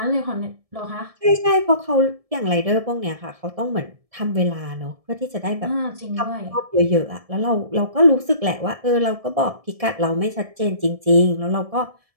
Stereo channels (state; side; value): late; left; 1.7 ms